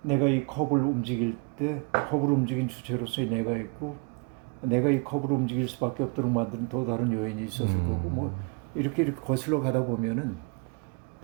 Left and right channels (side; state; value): left; quieter; 32.9 dB